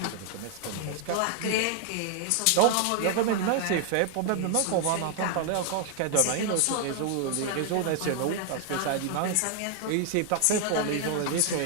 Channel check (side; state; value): both; different; correlation 0.00